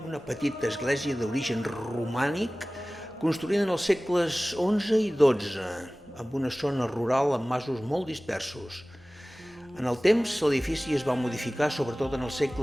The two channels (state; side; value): normal; both; correlation 0.98